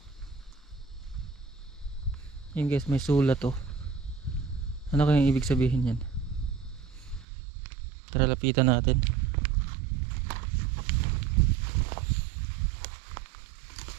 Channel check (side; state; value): left; drops out; at 7.2 s